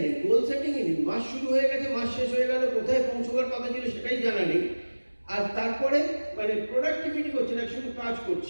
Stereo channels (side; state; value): both; inverted; correlation -1.00